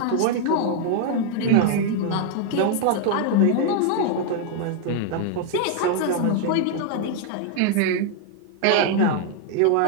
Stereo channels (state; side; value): different; both; correlation 0.00